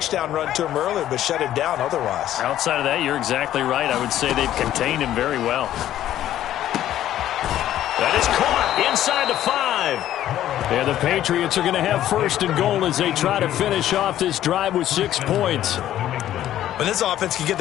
run to him earlier but shut him down otherwise. Outside of that, you're exactly right. I would say they've contained him very well. That is caught inside the 5. And the Patriots are going to have 1st and goal as they try to finish off this drive with 6 points. When this offense can get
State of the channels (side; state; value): right; quieter; 12.4 dB